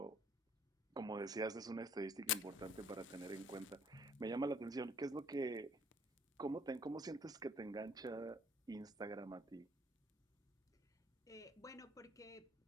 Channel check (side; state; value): both; normal; correlation 0.59